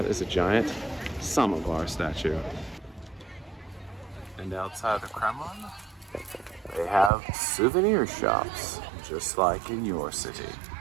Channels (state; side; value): drops out; left; at 7.1 s